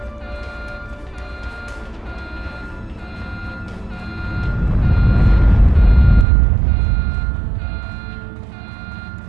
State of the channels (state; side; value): drops out; left; at 6.2 s